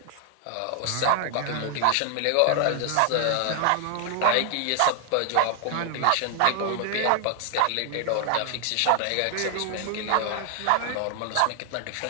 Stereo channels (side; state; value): both; different; correlation 0.00